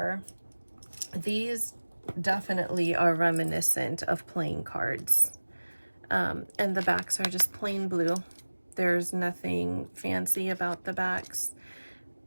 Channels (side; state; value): both; inverted; correlation -1.00